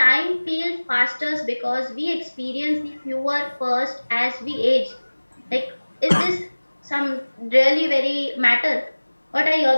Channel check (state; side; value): inverted; both; correlation -1.00